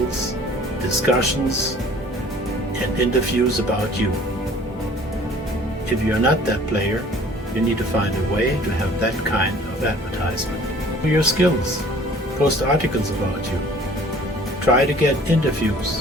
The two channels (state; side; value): normal; both; correlation 0.51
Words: discussions, and interviews about you. If you're not that player, you need to find a way to have that kind of advertisement. Show your skills. Post articles about you. Try to get